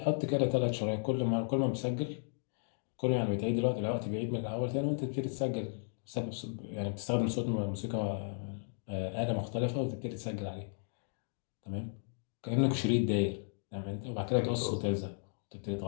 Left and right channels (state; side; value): silent; right; digital silence